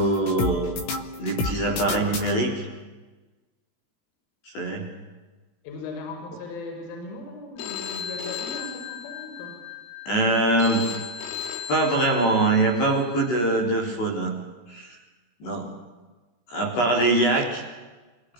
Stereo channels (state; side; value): late; right; 18 ms